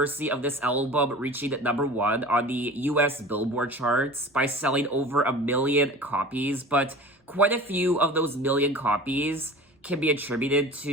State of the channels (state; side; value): normal; both; correlation 0.38